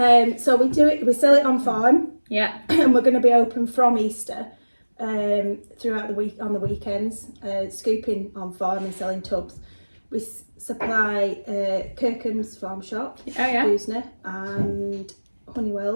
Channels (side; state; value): both; inverted; correlation -1.00